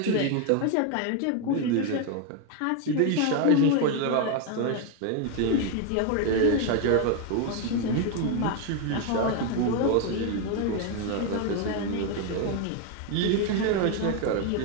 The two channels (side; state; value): both; different; correlation 0.01